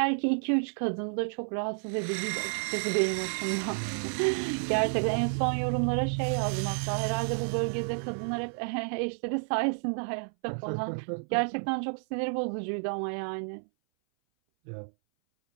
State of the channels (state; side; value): silent; left; 58 dB below the other